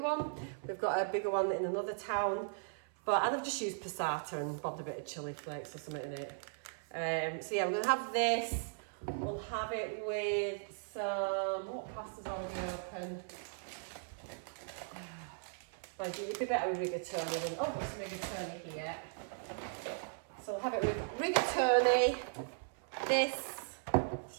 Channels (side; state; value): left; silent; 53 dB below the other